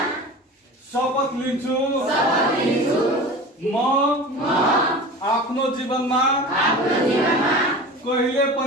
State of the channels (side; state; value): both; normal; correlation 0.35